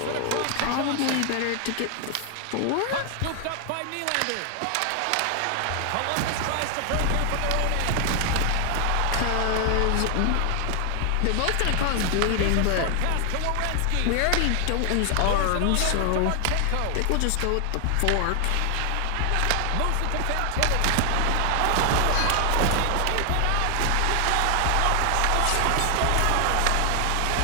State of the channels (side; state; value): both; different; correlation 0.00